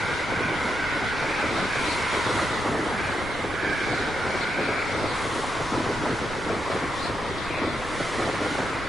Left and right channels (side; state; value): both; normal; correlation 0.83